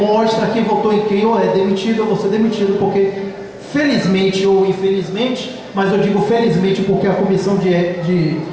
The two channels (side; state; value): both; identical; correlation 1.00